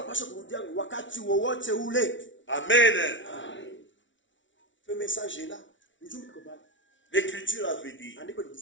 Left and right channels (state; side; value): late; right; 0.55 ms